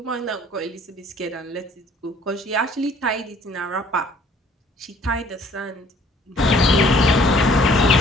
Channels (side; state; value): both; normal; correlation 0.57